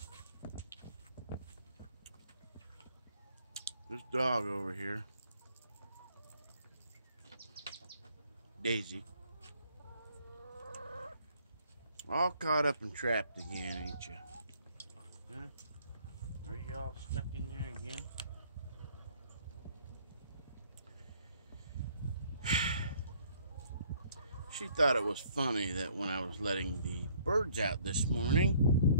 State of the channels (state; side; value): inverted; both; correlation -0.62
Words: This dog over here, Daisy, all caught up and trapped again, ain't you? Huh? Are you all stuck in there again? She thought it was funny that when I was letting the birds out this morning,